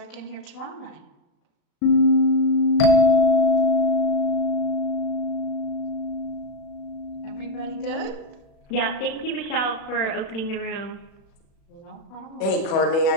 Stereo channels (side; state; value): right; late; 36 ms